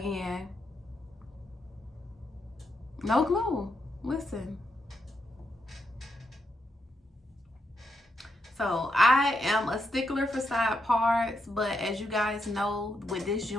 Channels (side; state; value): both; normal; correlation 0.81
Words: no glue. Listen. So I am a stickler for side parts, but as you guys know, with this